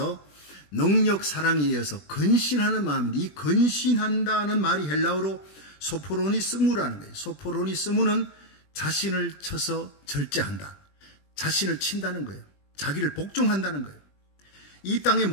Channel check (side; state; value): right; late; 20 ms